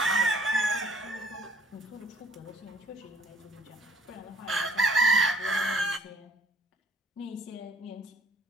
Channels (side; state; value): both; normal; correlation 0.60